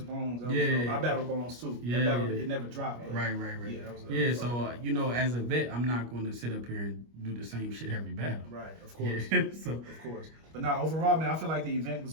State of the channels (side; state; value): left; late; 25 ms